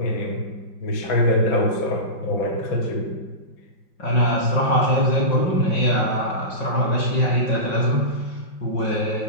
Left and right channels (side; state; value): right; late; 5.4 ms